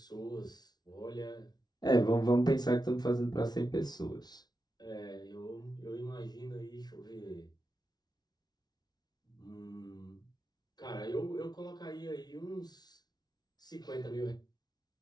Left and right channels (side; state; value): right; late; 0.19 ms